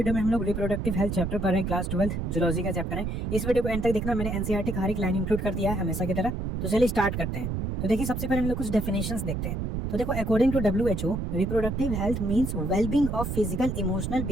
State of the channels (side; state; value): right; noise; rumble, 3 dB below the sound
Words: में हम लोग रिप्रोडक्टिव हेल्थ चैप्टर पढ़ रहे हैं, क्लास 12 जूलॉजी का चैप्टर है। इस वीडियो को एंड तक देखना, मैंने एनसीईआरटी का हर एक लाइन इंक्लूड कर दिया है हमेशा की तरह। तो चलिए स्टार्ट करते हैं। तो देखिए सबसे पहले हम लोग कुछ डेफिनेशंस देखते हैं। तो देखो according to WHO reproductive health means wellbeing of physical, emotional,